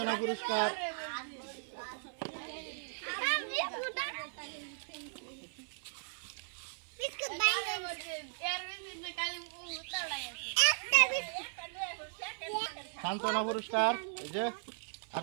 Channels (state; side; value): silent; left; 53 dB below the other